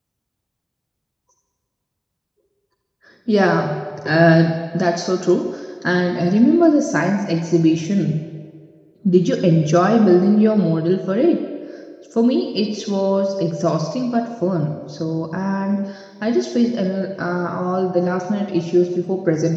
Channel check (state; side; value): identical; both; correlation 1.00